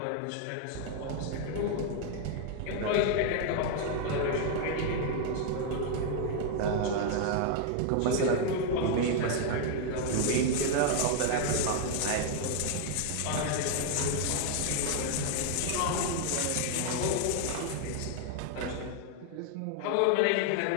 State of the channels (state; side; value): different; both; correlation 0.00